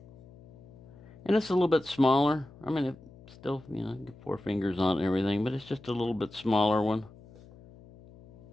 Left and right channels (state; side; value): noise; left; hum, 22 dB below the sound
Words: And it's a little bit smaller. I mean, it still, get 4 fingers on it and everything, but it's just a little bit smaller one.